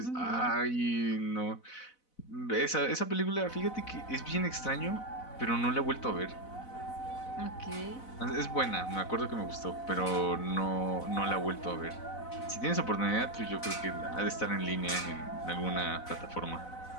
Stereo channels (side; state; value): right; late; 4.0 ms